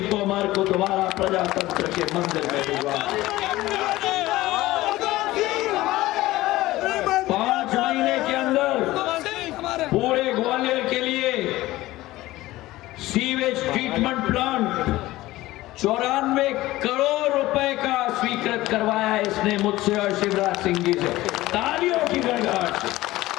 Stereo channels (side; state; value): right; quieter; 17.4 dB